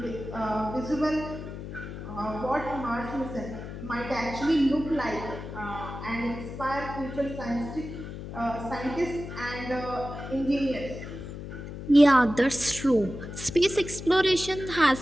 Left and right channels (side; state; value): left; noise; hum, 9 dB below the sound